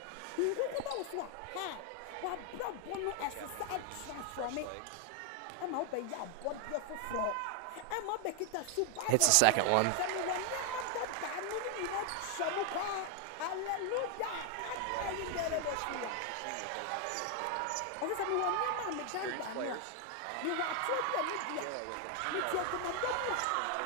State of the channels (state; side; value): different; both; correlation 0.00